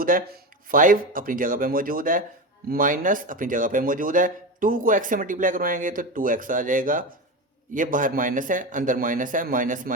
है। 5 अपनी जगह पे मौजूद है, माइनस अपनी जगह पे मौजूद है। 2 को x से मल्टीप्लाई करवाएंगे तो 2x आ जाएगा, ये बाहर माइनस है अंदर माइनस है, माइनस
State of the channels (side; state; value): both; normal; correlation 0.21